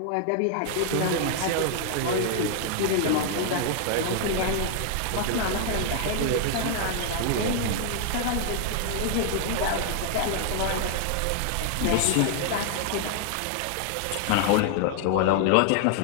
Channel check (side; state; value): both; different; correlation 0.00